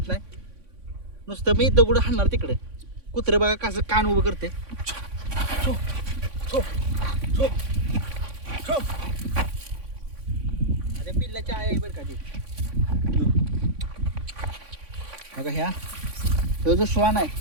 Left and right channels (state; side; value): late; left; 3.5 ms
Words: नाही, नुसतं मी दगड हाणणार तिकडे. कुत्रं बघा कसं कान उभं करते. छो छो छो छो. अरे पिल्लाच्या आहे बरं का ते. बघा ह्या जो श्वान आहे